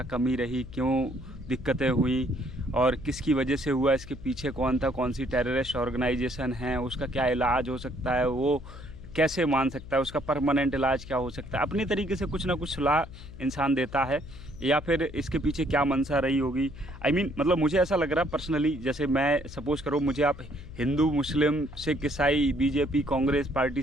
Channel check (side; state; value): left; noise; hum, 15 dB below the sound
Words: कमी रही, क्यों दिक्कतें हुई और किसकी वजह से हुआ, इसके पीछे कौन था, कौन सी टेररिस्ट ऑर्गेनाइजेशन है, उसका क्या इलाज हो सकता है, वो कैसे मान सकता है, उसका परमानेंट इलाज क्या हो सकता है। अपनी तरीके से कुछ ना कुछ सलाह इंसान देता है, या फिर इसके पीछे क्या मंशा रही होगी। मतलब मुझे ऐसा लग रहा पर्सनली, जैसे मैं सपोज करो मुझे आप हिंदू मुस्लिम सिख ईसाई बीजेपी कांग्रेस पार्टी